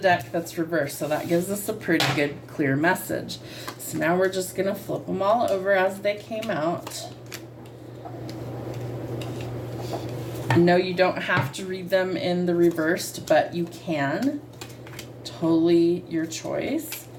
that's reversed. So that gives us a pretty good clear message. So now we're just going to flip them all over as they came out. No, you don't have to read them in the reversed, but you can. Totally your choice.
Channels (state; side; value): identical; both; correlation 1.00